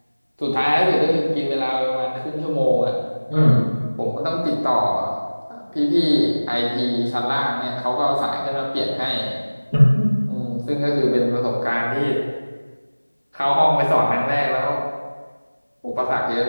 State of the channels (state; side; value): inverted; both; correlation -1.00